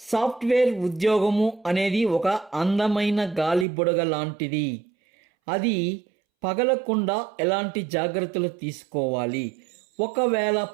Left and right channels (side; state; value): left; drops out; at 3.7 s